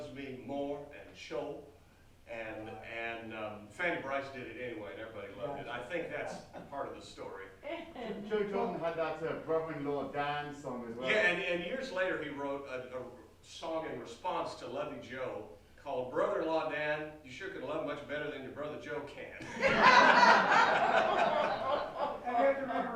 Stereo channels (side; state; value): both; identical; correlation 1.00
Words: me more and show. And Fanny Bryce did it anyway, and everybody loved it. I think that's part of the story. Joe Jordan had that brother-in-law Dan song as well. Yeah, and years later he wrote a song in response to Lovey Joe called Brother-in-Law Dan, you sure can love much better than your brother Joe can. And you have to